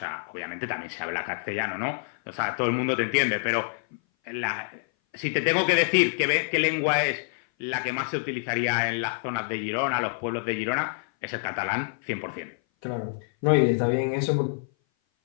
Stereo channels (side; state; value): right; silent; 57 dB below the other